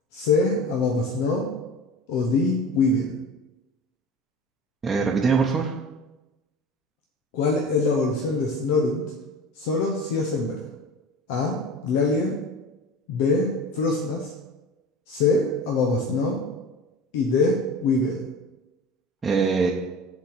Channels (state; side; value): normal; both; correlation 0.36